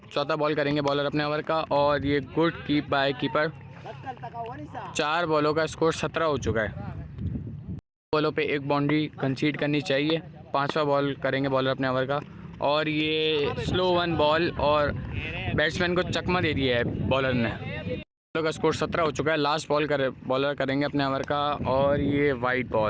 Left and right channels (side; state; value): both; identical; correlation 1.00